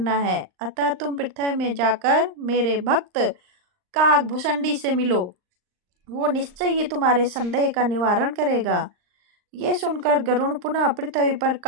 है। अतः तुम पृथ्वी में जाकर मेरे भक्त काकभुसंडी से मिलो, वो निश्चय ही तुम्हारे संदेह का निवारण करेगा। ये सुनकर गरुड़ पुनः पृथ्वी पर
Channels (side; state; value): left; late; 39 ms